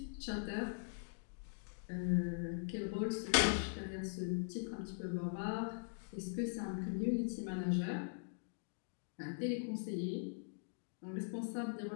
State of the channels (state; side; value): silent; right; digital silence